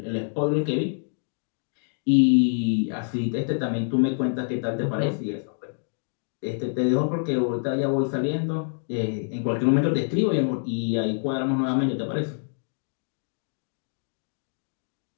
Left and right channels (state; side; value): silent; right; digital silence